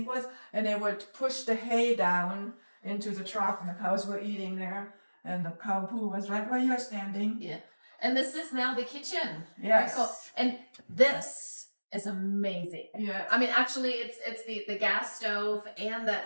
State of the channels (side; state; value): both; inverted; correlation -1.00